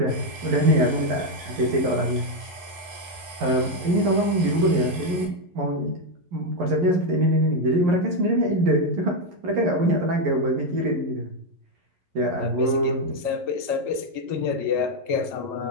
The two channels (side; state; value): left; late; 11 ms